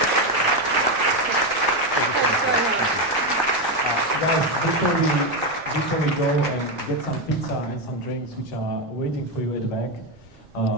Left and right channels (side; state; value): right; noise; rumble, 28 dB below the sound